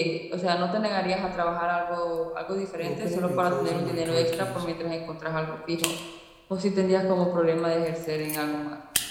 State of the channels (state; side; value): identical; both; correlation 1.00